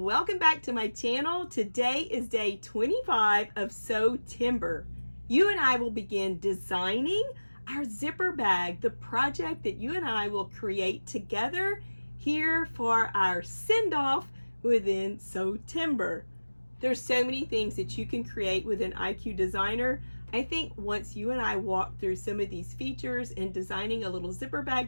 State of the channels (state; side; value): inverted; both; correlation -1.00